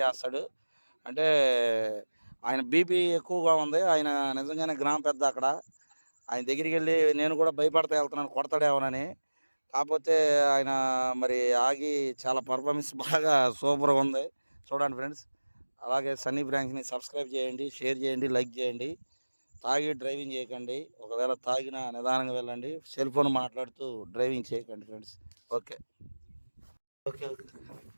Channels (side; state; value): both; inverted; correlation -1.00